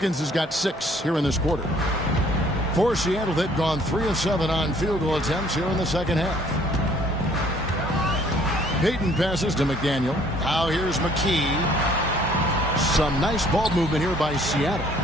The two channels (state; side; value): normal; both; correlation 0.59